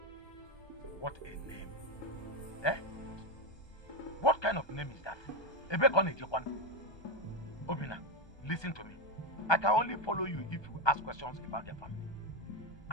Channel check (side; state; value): right; late; 1.2 ms